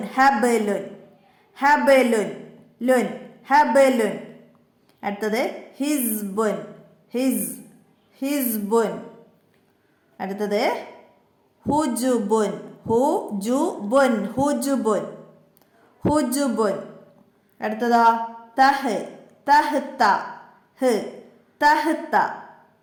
ഹ ബ ലുൻ, ഹ ബ ലുൻ, ലുൻ, ഹ ബ ലുൻ. അടുത്തത് ഹിസ്ബുൻ, ഹിസ്ബുൻ. അടുത്തത് ഹുജുബുൻ, ഹുജുബുൻ, ഹുജുബുൻ, ഹുജുബുൻ. അടുത്തതോ തഹ്, തഹ്ത, തഹ്ത,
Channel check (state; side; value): identical; both; correlation 1.00